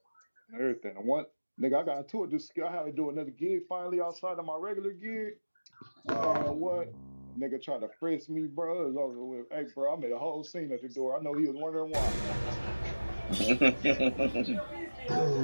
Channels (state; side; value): inverted; both; correlation -1.00